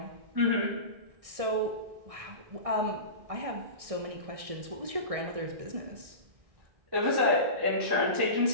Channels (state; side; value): late; left; 1.6 ms